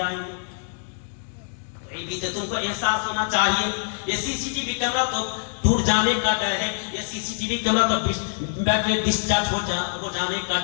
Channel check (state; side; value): silent; right; digital silence